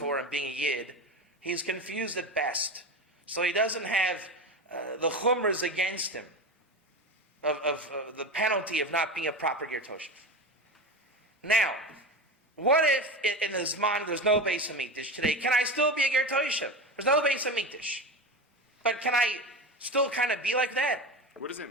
and being a Yid, he's confused at best. So he doesn't have the chumras against him of the penalty of not being a proper Ger Toshav. Now, what if in his mind there's no Beis Hamikdash today? Can I still be a Ger Toshav? There's no Beis Hamikdash. But can I still kind of be like that? What does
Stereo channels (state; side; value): normal; both; correlation 0.24